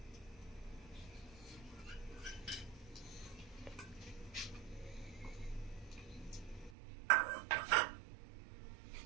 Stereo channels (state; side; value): drops out; left; at 6.8 s